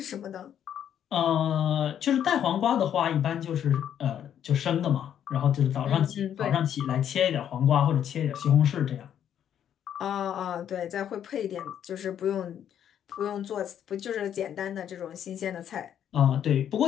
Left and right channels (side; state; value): right; quieter; 9.6 dB